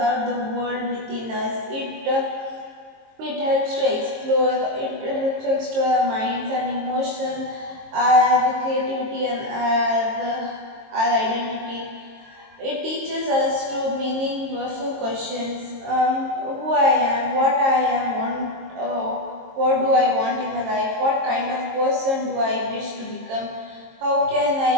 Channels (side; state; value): left; late; 22 ms